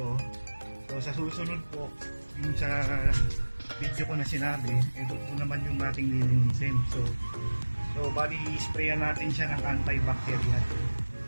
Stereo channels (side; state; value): both; inverted; correlation -1.00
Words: So sa susunod po, yung sa video ko na sinabi, ito po naman yung ating lilinisin. So bali sprayan natin siya ng antibacterial